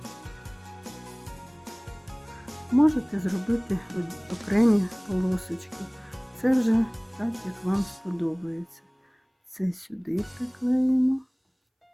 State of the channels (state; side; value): identical; both; correlation 1.00